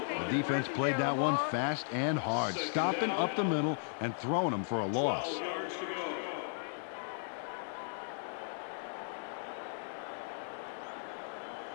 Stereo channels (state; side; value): silent; right; digital silence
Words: The defense played that one fast and hard, stopping up the middle and throwing them for a loss.